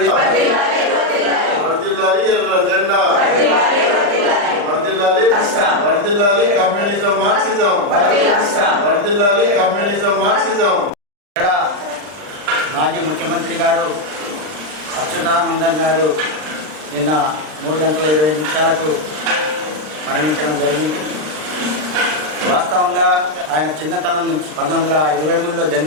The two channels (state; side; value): late; left; 39 ms